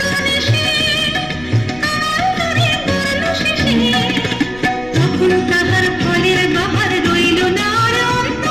দেশে ধরে পড়লো শেষে। তখন তাহার ফলের বাহার রইল না আর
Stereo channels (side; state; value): left; noise; rumble, 19 dB below the sound